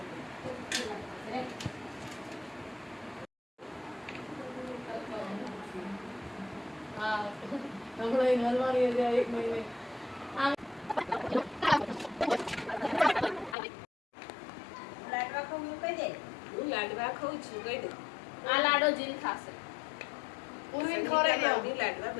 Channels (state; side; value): drops out; right; at 13.6 s